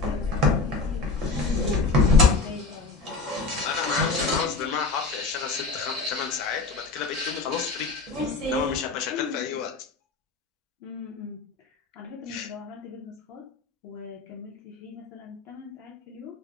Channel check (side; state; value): right; quieter; 3.8 dB